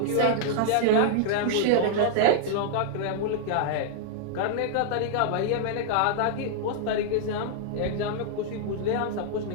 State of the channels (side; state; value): both; different; correlation -0.01